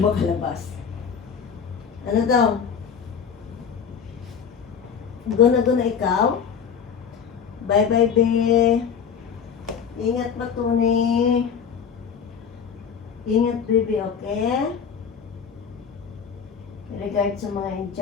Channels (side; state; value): right; quieter; 7.0 dB